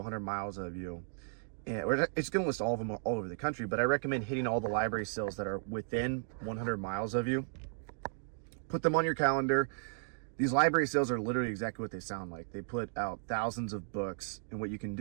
miles of you. And it's gonna list all of them all over the country, but I recommend hitting all the library sales that are within 100 miles of you. Put them on your calendar. These library sales are literally exactly what they sound like. They put out thousands of books, and what you can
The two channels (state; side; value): silent; left; digital silence